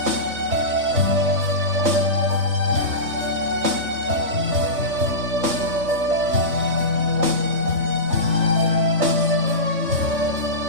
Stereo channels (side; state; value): left; late; 3.6 ms